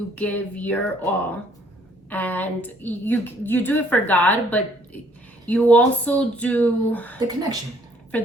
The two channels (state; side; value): normal; both; correlation 0.63